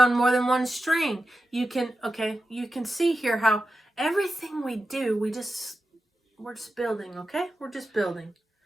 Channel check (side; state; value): both; normal; correlation 0.91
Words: more than one string. You can see here how everything we do, we're just building, okay? We're just building.